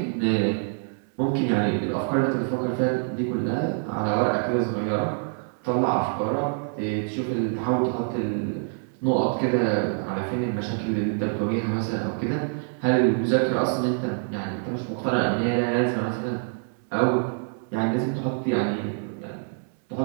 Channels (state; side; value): silent; left; 60 dB below the other